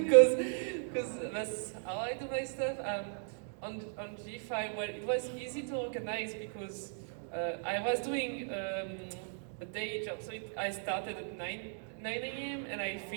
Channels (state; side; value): silent; left; digital silence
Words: that's how I do my stuff. On G5, well, it was easy to organize because I was doing a day job. So I started at 9 a.m. and I